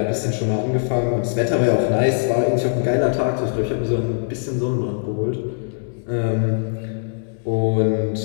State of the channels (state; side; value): silent; right; digital silence